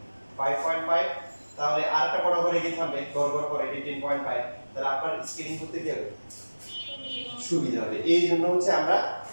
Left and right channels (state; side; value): inverted; both; correlation -1.00